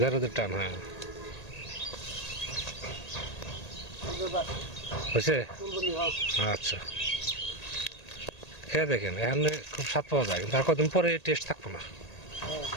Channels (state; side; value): late; right; 1.8 ms